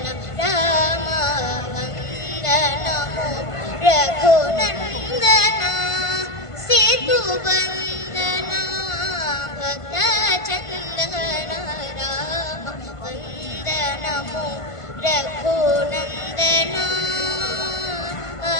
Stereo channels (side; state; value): right; late; 1.5 ms